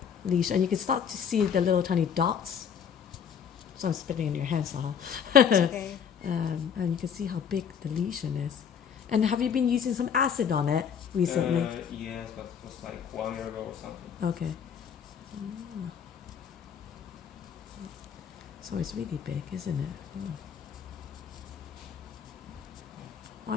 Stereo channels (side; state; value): right; quieter; 7.6 dB